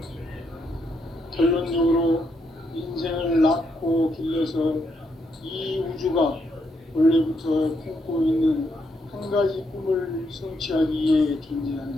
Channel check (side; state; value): both; normal; correlation 0.78